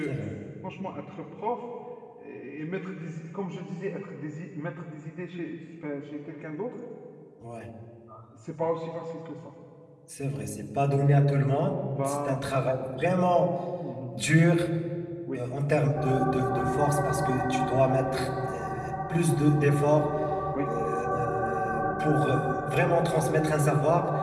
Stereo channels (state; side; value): identical; both; correlation 1.00